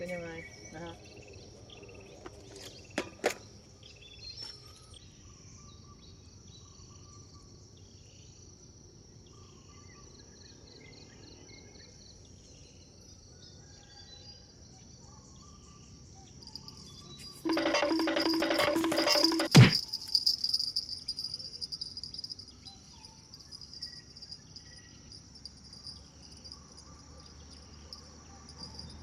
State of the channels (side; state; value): both; identical; correlation 1.00